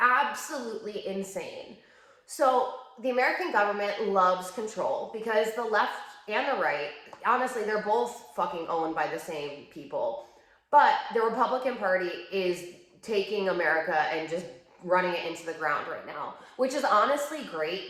insane. So the American government loves control because the left and the right, honestly, they're both fucking owned by the same people. But the Republican Party is taking America and just running it into the ground right now, which is honestly great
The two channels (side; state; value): both; identical; correlation 1.00